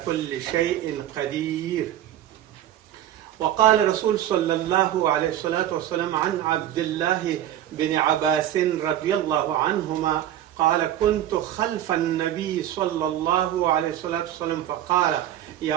كل شيء قدير. وقال رسول صلى الله عليه الصلاة والسلام عن عبد الله بن عباس رضي الله عنهما قال: كنت خلف النبي صلى الله عليه الصلاة والسلام فقال:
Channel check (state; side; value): quieter; left; 11.9 dB